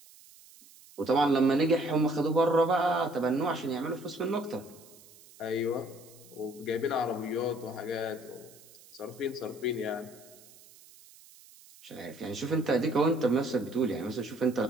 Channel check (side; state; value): right; noise; hiss, 23 dB below the sound